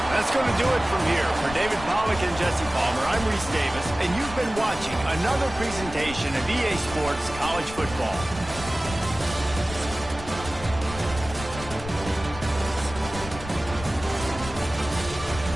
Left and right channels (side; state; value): left; noise; rumble, 12 dB below the sound